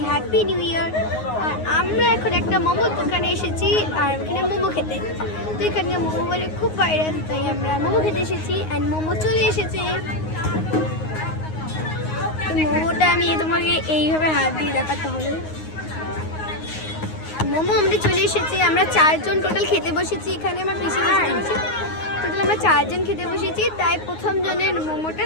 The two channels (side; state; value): right; late; 9.5 ms